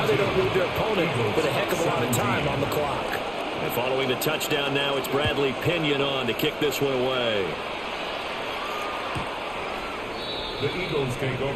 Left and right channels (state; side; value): noise; right; rumble, 23 dB below the sound